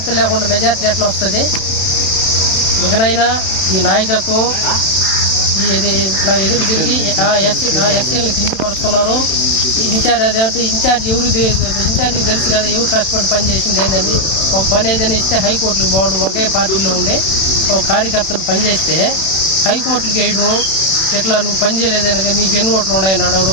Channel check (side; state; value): right; late; 31 ms